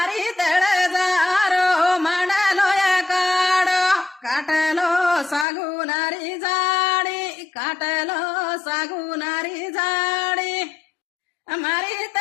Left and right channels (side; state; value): right; drops out; at 5.5 s